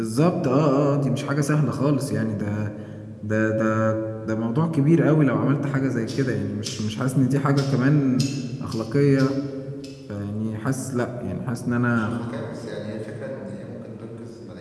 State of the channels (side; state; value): both; identical; correlation 1.00